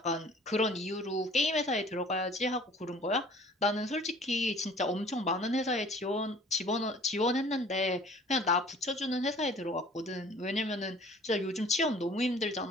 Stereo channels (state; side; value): normal; both; correlation 0.50